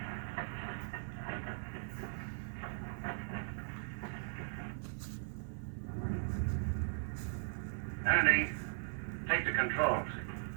Andy, take the controls.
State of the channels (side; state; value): left; silent; 52 dB below the other